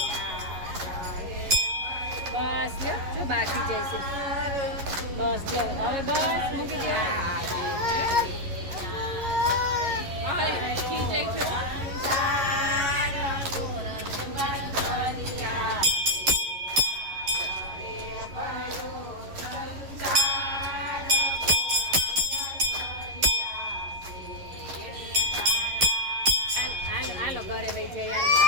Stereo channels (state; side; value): late; left; 11 ms